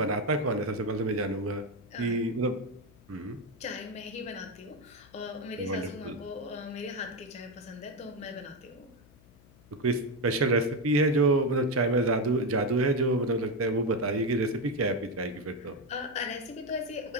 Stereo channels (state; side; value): noise; left; hum, 26 dB below the sound